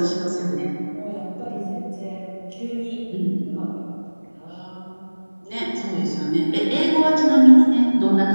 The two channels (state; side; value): inverted; both; correlation -1.00